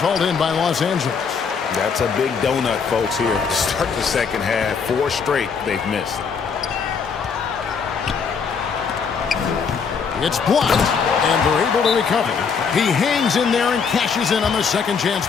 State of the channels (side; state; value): right; quieter; 5.9 dB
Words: in by Los Angeles. That's a big donut, folks, here to start the second half. 4 straight they've missed. It's blocked, and they're able to recover. He hangs in there and cashes in on the second chance